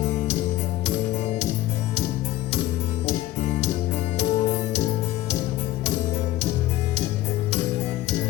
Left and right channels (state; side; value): quieter; right; 15.6 dB